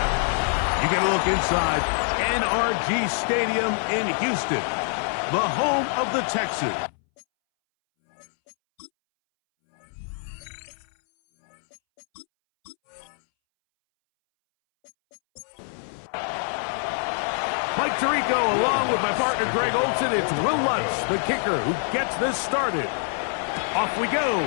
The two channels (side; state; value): right; silent; 62 dB below the other